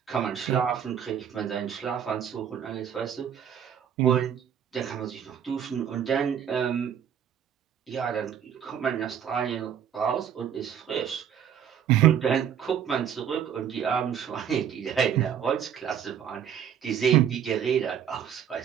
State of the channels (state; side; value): quieter; left; 8.8 dB